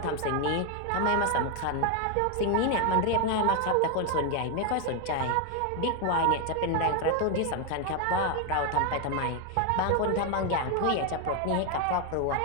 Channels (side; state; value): both; different; correlation 0.01